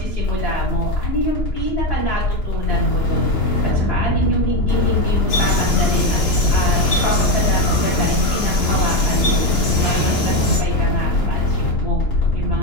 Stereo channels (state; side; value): late; right; 2.9 ms